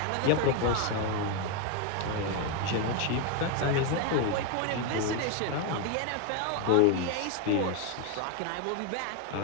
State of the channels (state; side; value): different; both; correlation 0.02